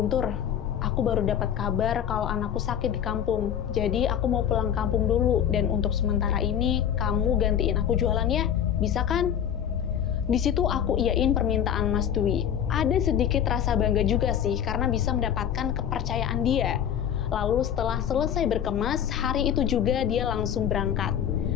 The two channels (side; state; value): right; quieter; 9.2 dB